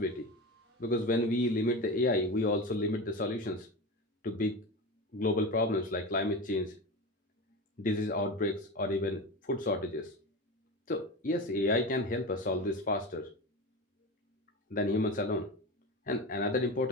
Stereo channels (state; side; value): normal; both; correlation 0.25